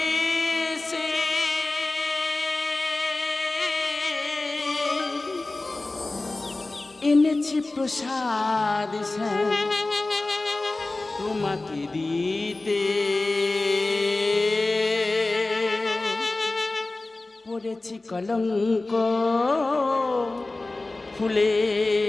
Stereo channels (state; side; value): quieter; right; 3.1 dB